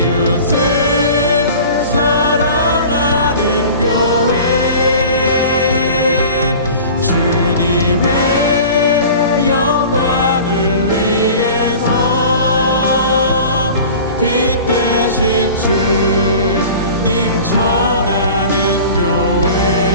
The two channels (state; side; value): inverted; both; correlation -0.40